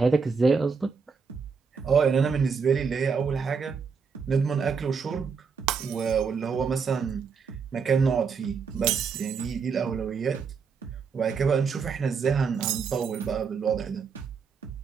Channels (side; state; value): left; quieter; 5.6 dB